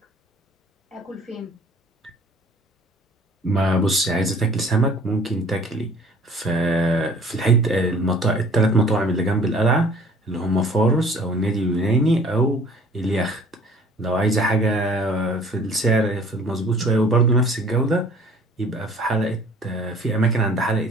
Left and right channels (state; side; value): normal; both; correlation 0.52